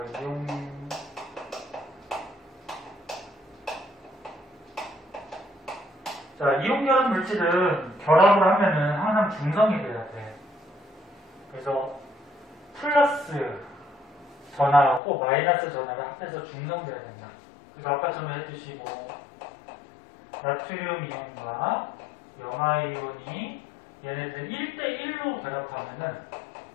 자, 이온 결합 물질은 결합을 하면은 항상 중성이 돼야 돼. 그래서 플러스 전하하고 마이너스 전하를 합해서 중성돼야 된다. 그래서 아까처럼 했듯이 뭐 나트륨 이온과 염화 이온이 얘네들 1대1로 결합하면은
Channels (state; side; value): drops out; right; at 15.0 s